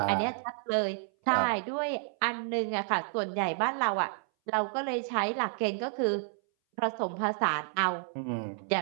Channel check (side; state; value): left; silent; 57 dB below the other